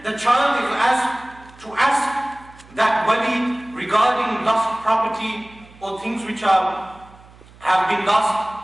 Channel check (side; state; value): right; noise; hum, 24 dB below the sound